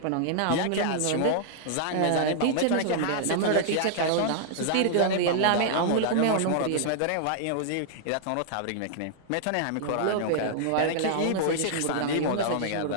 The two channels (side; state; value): both; different; correlation -0.01